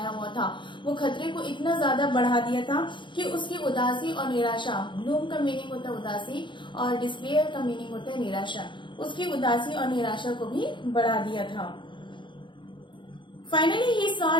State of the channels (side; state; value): right; late; 0.23 ms